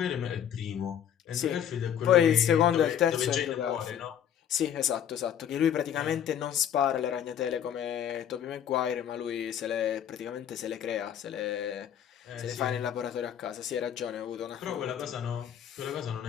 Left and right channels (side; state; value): right; quieter; 9.5 dB